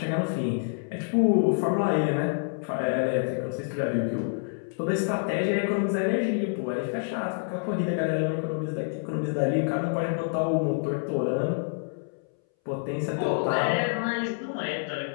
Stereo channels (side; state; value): right; silent; 60 dB below the other